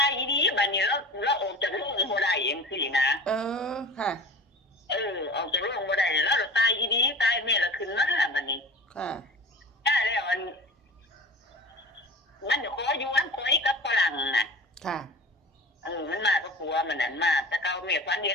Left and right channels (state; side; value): normal; both; correlation 0.36